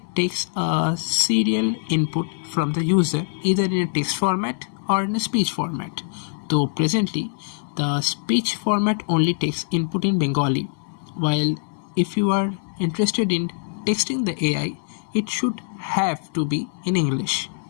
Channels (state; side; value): silent; right; 61 dB below the other